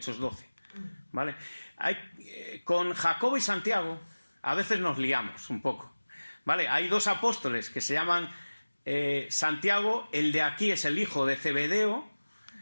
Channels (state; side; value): inverted; both; correlation -1.00